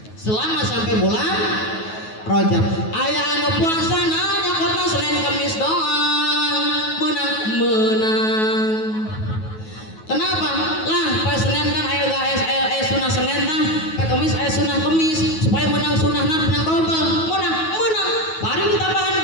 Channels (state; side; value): late; right; 9.3 ms